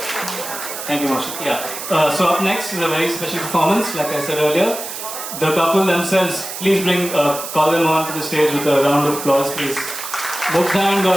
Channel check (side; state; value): right; noise; hiss, 8 dB below the sound